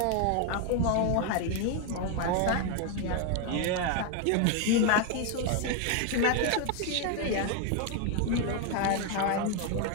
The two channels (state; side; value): different; both; correlation 0.01